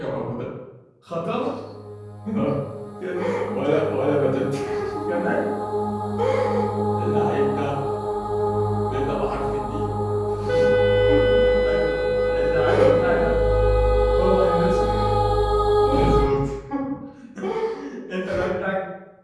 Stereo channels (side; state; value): both; identical; correlation 1.00